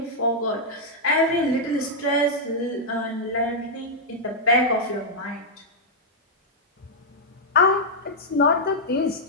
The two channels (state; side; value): normal; both; correlation -0.06